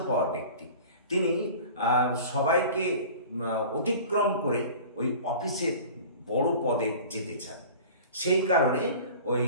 ব্যক্তি। তিনি সবাইকে অতিক্রম করে ওই অফিসের বড় পদে যেতে চান। সেই কারণে ওই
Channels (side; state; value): both; inverted; correlation -0.41